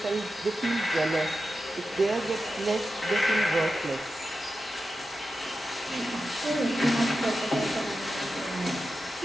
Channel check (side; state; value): both; normal; correlation 0.91